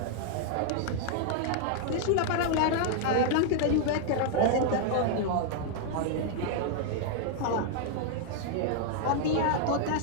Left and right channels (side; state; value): both; different; correlation -0.01